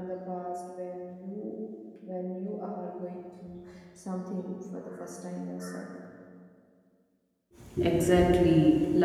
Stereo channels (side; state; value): both; identical; correlation 1.00